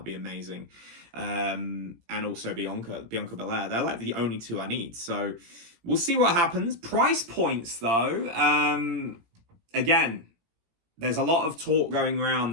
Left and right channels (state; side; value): late; left; 17 ms